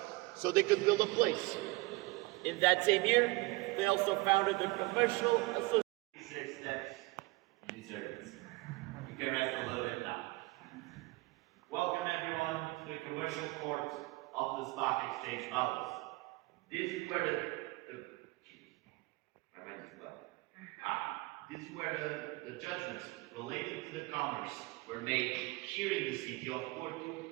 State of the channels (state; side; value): quieter; left; 23.0 dB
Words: so they could build a place. In that same year, they also founded the Commercial Association. 6 steps, you deserve it. You can rest a little bit now. Welcome everyone to the commercial court of the Stock Exchange Palace. This is where this is where the judgments related to the commerce were made here in the city of Porto